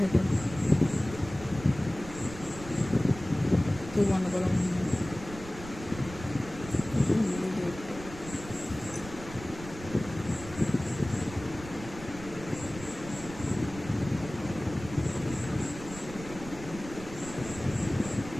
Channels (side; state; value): right; noise; rumble, 13 dB below the sound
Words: থেকে তুই বন্ধ করো।